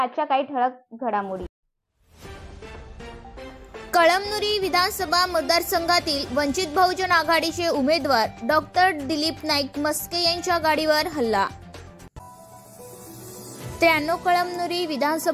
आजच्या काही ठळक घडामोडी. कळमनुरी विधानसभा मतदारसंघातील वंचित बहुजन आघाडीचे उमेदवार डॉक्टर दिलीप नाईक मस्के यांच्या गाडीवर हल्ला. 93 कळमनुरी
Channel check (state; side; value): identical; both; correlation 1.00